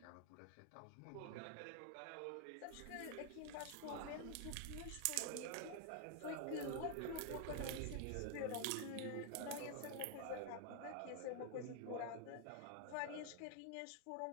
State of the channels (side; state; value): both; different; correlation 0.00